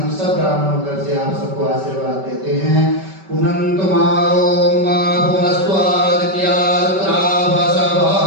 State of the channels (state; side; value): late; left; 5.2 ms